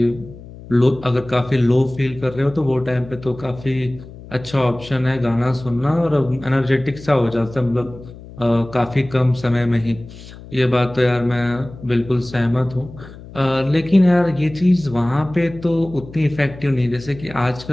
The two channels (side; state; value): left; noise; hum, 17 dB below the sound